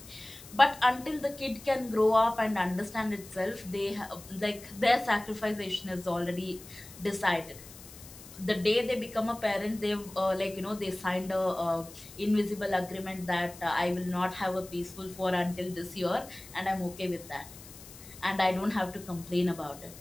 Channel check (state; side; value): noise; left; hiss, 18 dB below the sound